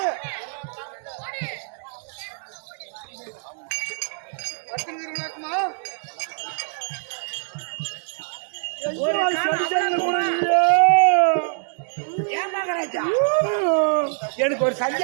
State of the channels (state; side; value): silent; left; 61 dB below the other